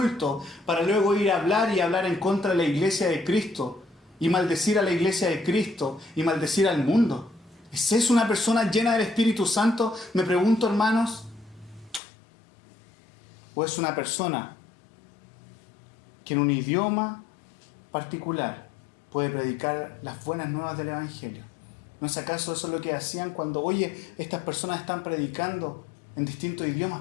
para luego ir a hablar y hablar en contra de la iglesia de Cristo, y maldecir a la iglesia de Cristo, y maldecir al mundo. ¿Es eso una persona llena del Espíritu Santo? Me pregunto, hermanos. ¿O es una persona que en un idioma particular puede predicar las buenas nuevas del Evangelio? ¿No es acaso eso lo que hacían cuando, oye, estas personas están predicando en distintos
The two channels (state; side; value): drops out; right; at 12.0 s